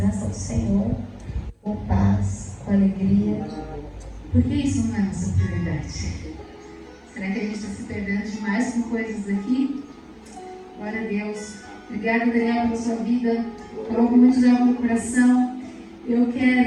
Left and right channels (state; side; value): identical; both; correlation 1.00